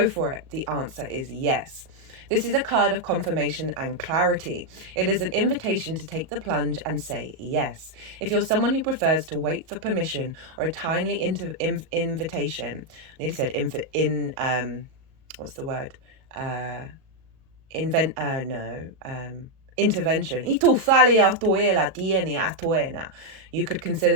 for it. The answer is yes. This is a card of confirmation and clarity. It is an invitation to take the plunge and say yes. If you're someone who prefers to wait for permission or a timely invitation, I nearly said intervention. You could consider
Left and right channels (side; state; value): left; late; 37 ms